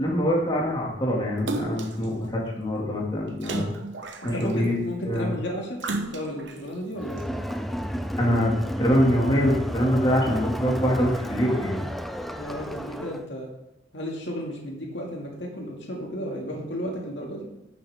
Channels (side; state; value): both; normal; correlation 0.71